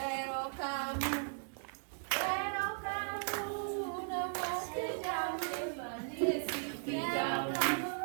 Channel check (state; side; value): silent; left; digital silence